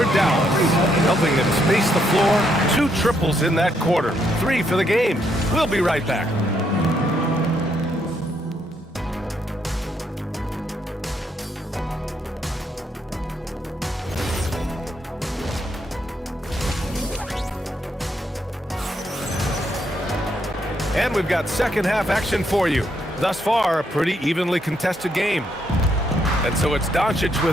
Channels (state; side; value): normal; both; correlation 0.75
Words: Dallas, helping them space the floor. 2 triples in that quarter. 3 for the game. We'll be right back. And we've got second half action for you. Thus far, a pretty evenly contested game. And so it's Doncic